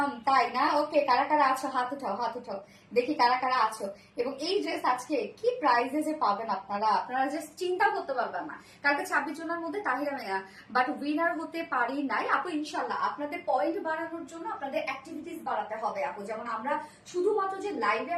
তাই না? ওকে, কারা কারা আছো হাত উঠাও, হাত উঠাও, দেখি কারা কারা আছো। এবং এই ড্রেস আজকে কি প্রাইজে যে পাবেন আপনারা, আপনারা জাস্ট চিন্তা করতে পারবেন না। কালকে 26 জনের মধ্যে তাহিরা মেয়া, বাট উইনার হতে পারি নাই আপু। ইনশাল্লাহ আপনাদের পয়েন্ট বাড়ানোর জন্য আপনাদের অ্যাক্টিভিটিস বাড়াতে হবে আপু। যেমন আমরা শুধুমাত্র যে লাইভে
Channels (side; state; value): both; identical; correlation 1.00